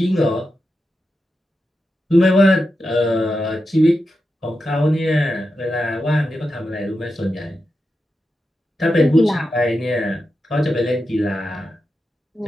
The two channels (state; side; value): normal; both; correlation 0.89